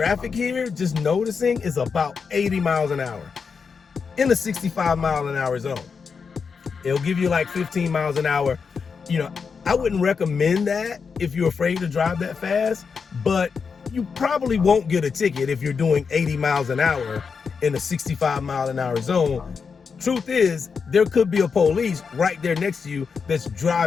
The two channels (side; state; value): right; quieter; 5.6 dB